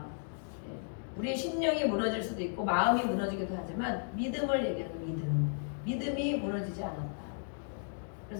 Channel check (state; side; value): silent; right; digital silence